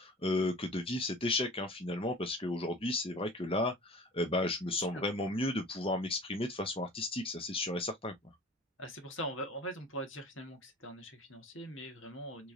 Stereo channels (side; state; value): both; normal; correlation 0.42